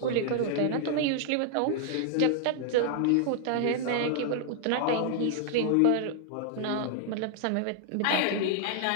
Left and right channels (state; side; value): different; both; correlation -0.01